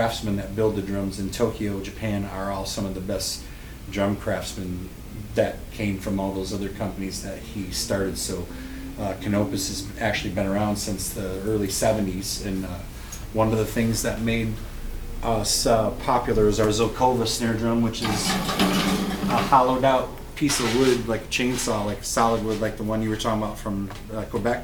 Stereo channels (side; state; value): both; identical; correlation 1.00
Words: that build the drums in Tokyo, Japan, are all some of the best drum craftsmen that came from all those other companies that he started. So Canopus has actually been around since the early 70s, and one of the things that made us popular is our Zokova snare drum, which is a hollowed out piece of wood, like a chainsaw, like solid wood, like the one you were talking about from